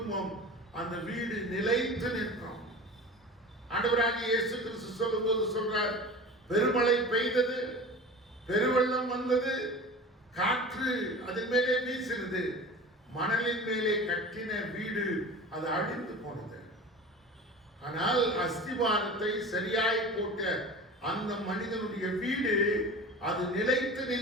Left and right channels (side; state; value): both; normal; correlation 0.35